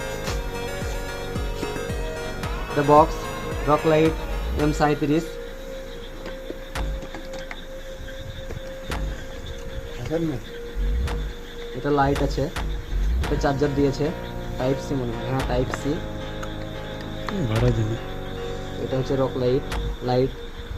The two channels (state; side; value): identical; both; correlation 1.00